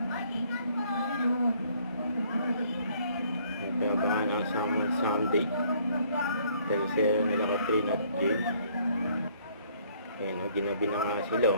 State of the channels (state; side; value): inverted; both; correlation -0.62